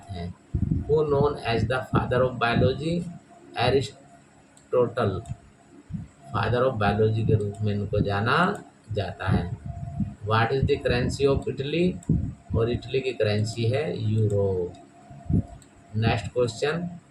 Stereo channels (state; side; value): identical; both; correlation 1.00